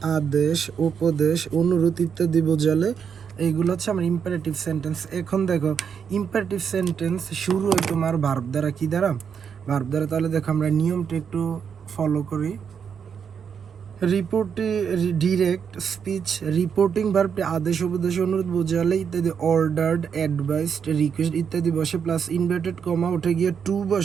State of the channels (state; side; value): quieter; left; 7.1 dB